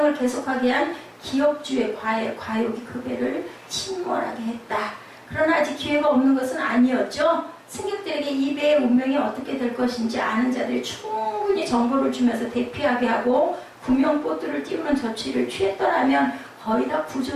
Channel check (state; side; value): identical; both; correlation 1.00